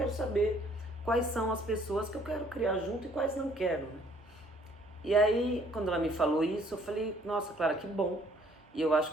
saber quais são as pessoas que eu quero criar junto e quais não quero, né? E aí, quando ela me falou isso, eu falei, nossa, Clara, que bom. E eu acho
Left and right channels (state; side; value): normal; both; correlation 0.61